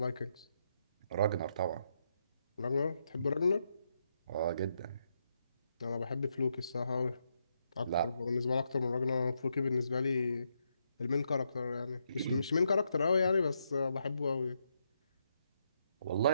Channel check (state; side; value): inverted; both; correlation -0.79